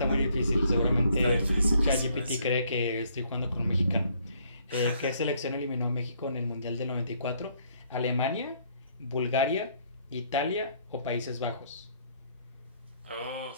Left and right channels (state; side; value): inverted; both; correlation -0.66